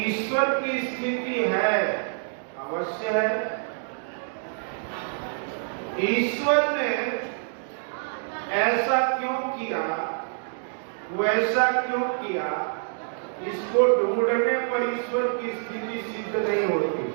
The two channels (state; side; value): silent; left; digital silence